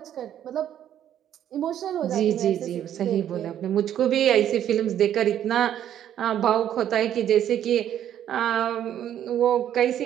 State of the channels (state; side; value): quieter; left; 10.6 dB